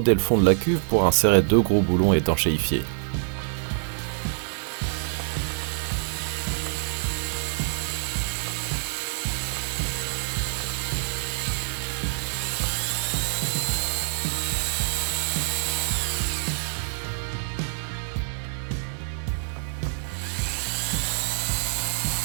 le fond de la cuve pour insérer 2 gros boulons étanchéifiés.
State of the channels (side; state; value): left; silent; digital silence